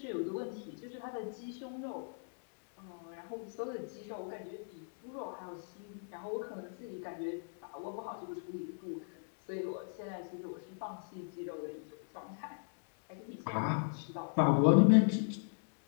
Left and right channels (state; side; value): silent; right; digital silence